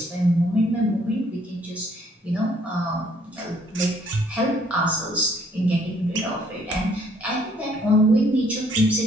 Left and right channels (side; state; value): both; normal; correlation 0.64